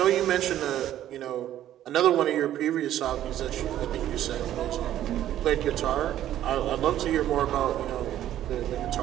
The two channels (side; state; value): left; quieter; 12.2 dB